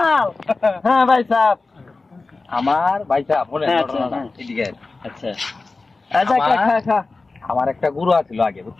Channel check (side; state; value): right; quieter; 3.7 dB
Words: হ্যাঁ ভাই সাহেব। আমার ভাই সাহেব বলেন হ্যাঁ, ঘটনাটা। হ্যাঁ। এদিকে আচ্ছা আচ্ছা, খা আমার- খা খা। আমার একটা গরু আছিল আগে,